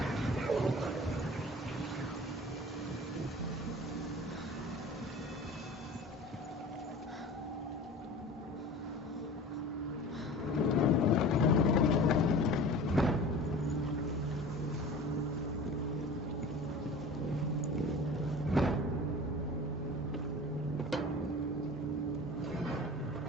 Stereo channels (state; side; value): normal; both; correlation 0.38